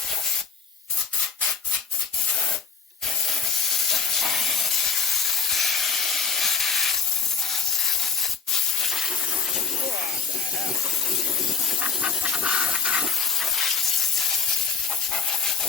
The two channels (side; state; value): right; quieter; 5.7 dB